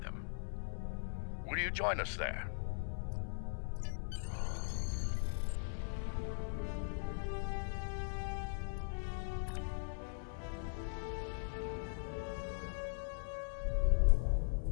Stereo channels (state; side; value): silent; right; 51 dB below the other